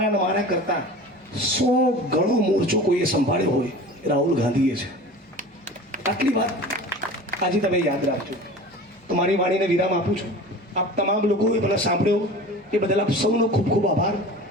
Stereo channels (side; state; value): both; normal; correlation 0.38